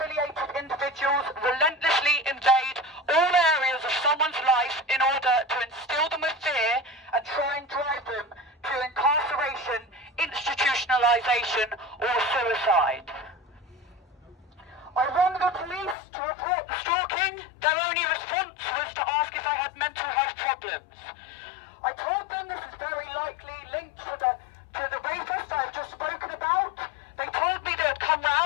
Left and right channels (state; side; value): drops out; right; at 16.0 s